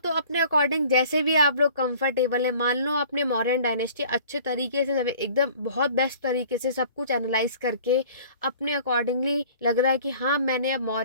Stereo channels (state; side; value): inverted; both; correlation -0.50